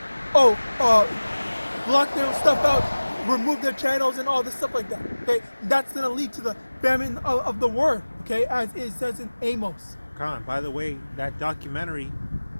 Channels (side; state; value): both; inverted; correlation -1.00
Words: Block their stuff out, remove their channels and all this stuff like that. Okay, that's gonna lead to the famine of the word. Okay, as it says in Amos. Khan, by the way, that documentary